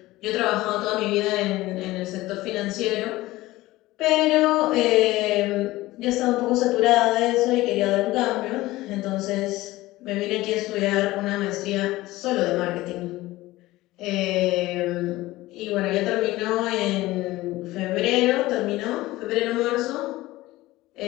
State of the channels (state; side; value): quieter; right; 18.0 dB